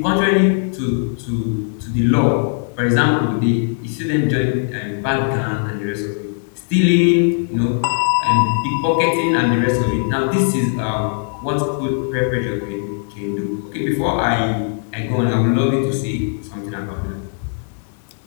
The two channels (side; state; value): right; silent; 64 dB below the other